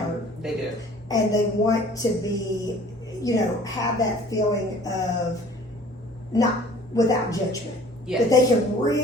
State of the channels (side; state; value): both; normal; correlation 0.50